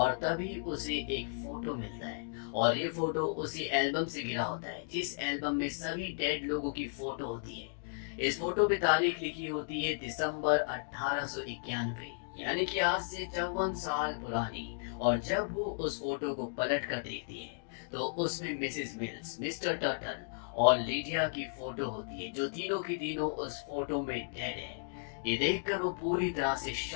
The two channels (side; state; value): right; silent; digital silence